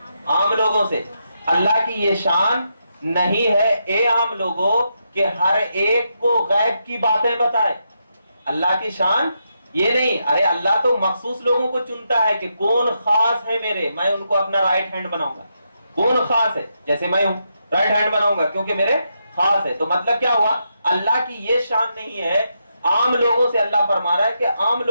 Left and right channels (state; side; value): inverted; both; correlation -0.82